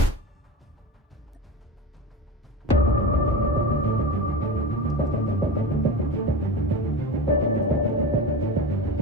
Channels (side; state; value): both; normal; correlation 0.27